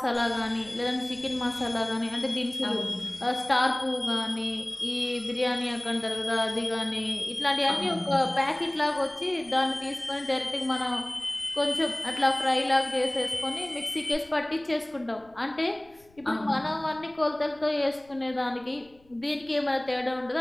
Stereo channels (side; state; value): left; noise; rumble, 30 dB below the sound